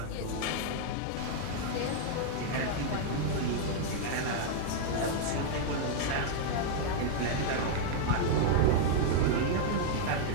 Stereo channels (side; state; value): both; different; correlation -0.01